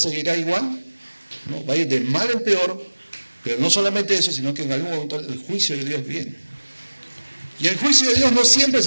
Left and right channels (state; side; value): inverted; both; correlation -1.00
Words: igual, ¿no? Va a ir de mal en peor, pero no solamente eso, sino que en algún momento el juicio de Dios viene. Y el juicio de Dios no siempre